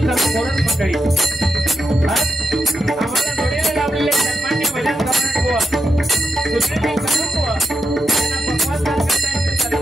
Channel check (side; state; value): both; normal; correlation 0.85